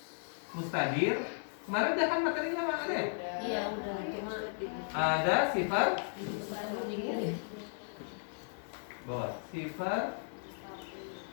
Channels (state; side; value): silent; right; digital silence